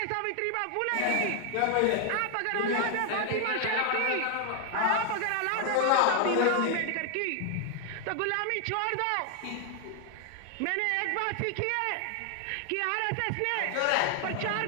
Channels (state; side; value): different; both; correlation 0.00